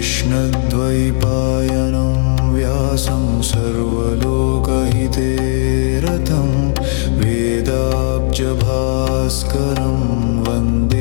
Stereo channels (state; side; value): silent; right; 70 dB below the other